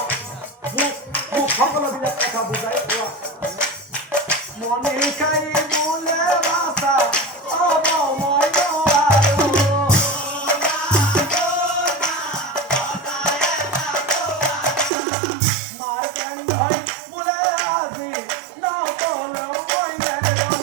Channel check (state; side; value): drops out; left; at 14.9 s